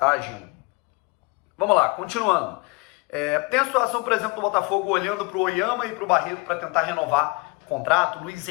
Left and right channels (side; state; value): right; quieter; 27.5 dB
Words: agindo. Vamos lá, continuando. Tem a situação, por exemplo, do Botafogo olhando pro Oyama e pro Barreto para tentar renovar o contrato. Luiz